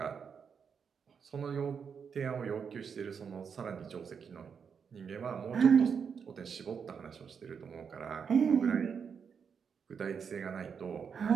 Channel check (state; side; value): quieter; left; 6.6 dB